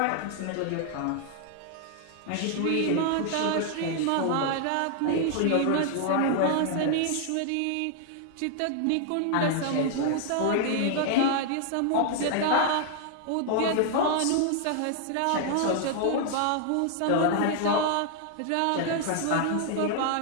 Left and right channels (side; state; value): both; different; correlation 0.00